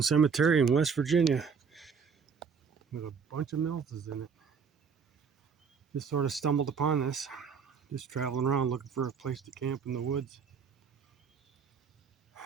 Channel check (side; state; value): left; quieter; 6.1 dB